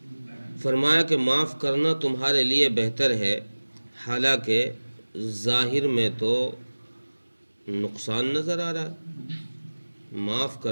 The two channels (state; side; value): inverted; both; correlation -1.00